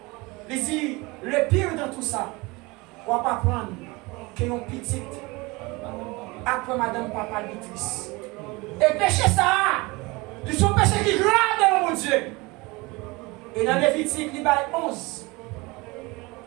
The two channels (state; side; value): quieter; left; 24.2 dB